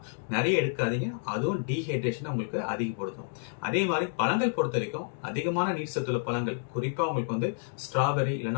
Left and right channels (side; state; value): right; silent; digital silence